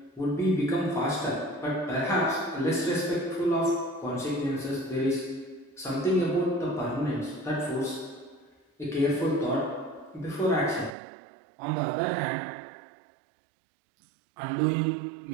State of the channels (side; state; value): left; drops out; at 11.0 s